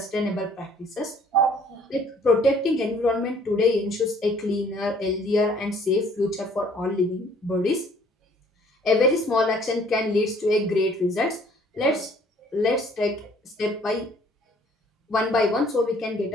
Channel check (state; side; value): normal; both; correlation 0.58